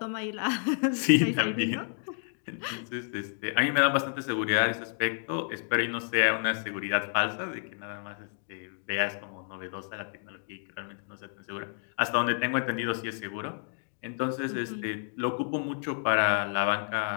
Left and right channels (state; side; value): silent; right; 56 dB below the other